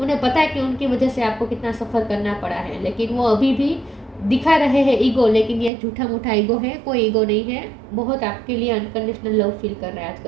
पता है कि उनकी वजह से आपको कितना सफ़र करना पड़ा है, लेकिन वो अभी भी दिखा रहे हैं ईगो, लेकिन ये झूठा मूठा ईगो है, कोई ईगो नहीं है। बहुत आपके लिए अनकंडीशनल लव फील कर रहे हैं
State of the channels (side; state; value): left; drops out; at 5.7 s